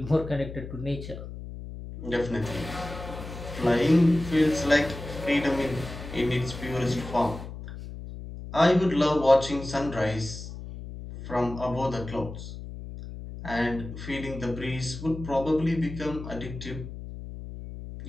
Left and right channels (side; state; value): left; noise; hum, 11 dB below the sound